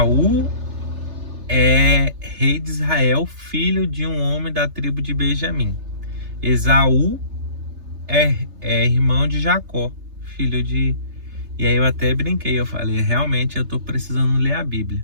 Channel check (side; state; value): left; late; 3.3 ms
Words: é rei de Israel, filho de um homem da tribo de Benjamim. Esaú é irmão de Jacó, filho de..." E aí eu até brinquei, eu falei, realmente eu tô precisando ler a Bíblia.